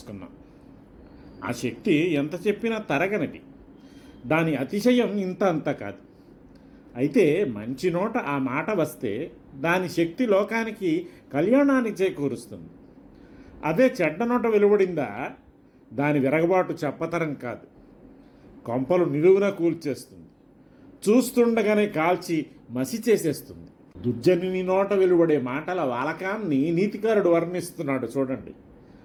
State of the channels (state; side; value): identical; both; correlation 1.00